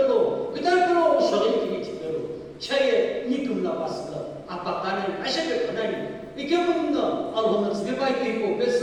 그 다음에 또 소리 이쪽 빼도 차에 니금 나왔어 아빠 가는 아시게 그다니 이게 뭐는 아우는 집에 빨리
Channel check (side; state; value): both; identical; correlation 1.00